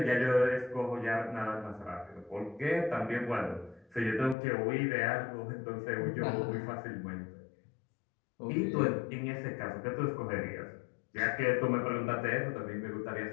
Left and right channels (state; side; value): drops out; right; at 4.4 s